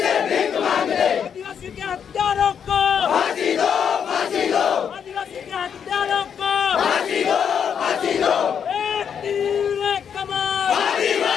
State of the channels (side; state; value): right; quieter; 7.7 dB